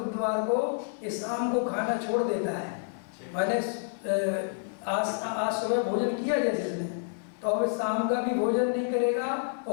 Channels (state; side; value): silent; right; digital silence